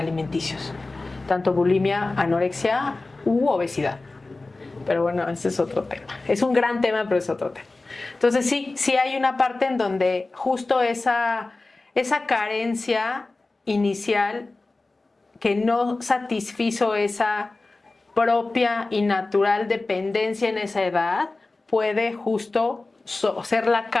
tanto bulimia, anorexia u obesidad. Pero bueno, ese es otro tema. Es un gran tema, pero es otro tema. Entonces sí hay una parte en donde justo esa carencia inicial que no satisfizo esa propia y natural dependencia en esa edad puede justo ser la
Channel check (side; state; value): right; quieter; 3.3 dB